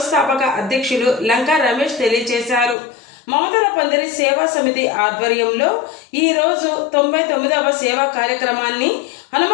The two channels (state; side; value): drops out; right; at 2.8 s